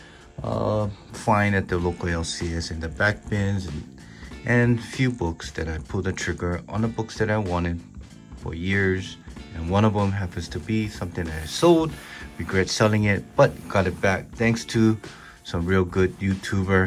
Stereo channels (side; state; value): both; identical; correlation 1.00